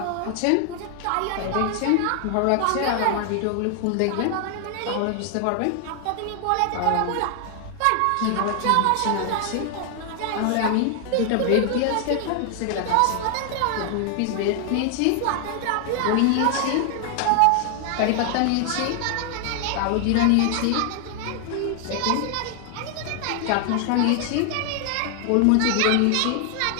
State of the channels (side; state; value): both; different; correlation 0.00